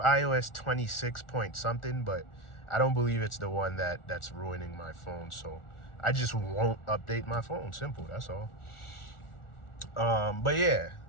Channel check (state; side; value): late; right; 1.4 ms